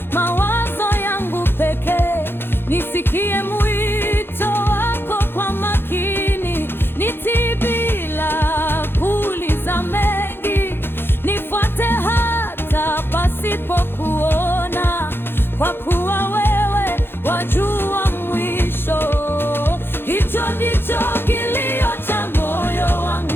mawazo yangu pekee, nisikie mwito wako kwa makini. Nitii bila kuuliza mengi, nifuate hata pasipokuona, kwa kuwa wewe wajua mwisho. Hicho ndicho kilio cha moyo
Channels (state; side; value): late; right; 0.10 ms